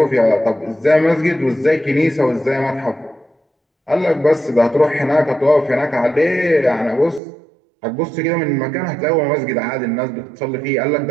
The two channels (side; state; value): left; drops out; at 7.2 s